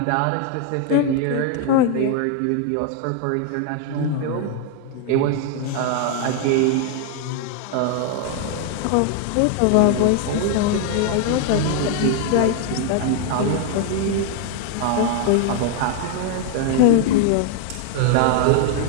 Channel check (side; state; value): both; different; correlation 0.00